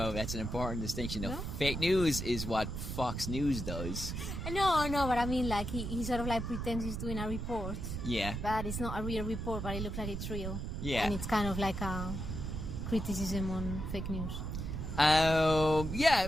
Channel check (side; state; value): right; noise; rumble, 4 dB below the sound